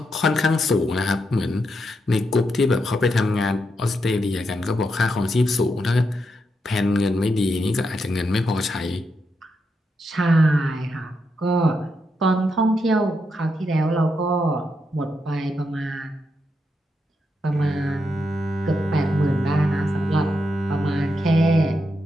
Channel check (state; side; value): normal; both; correlation 0.83